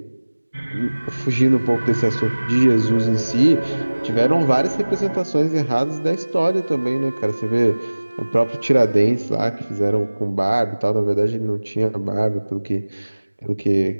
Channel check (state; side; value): inverted; both; correlation -1.00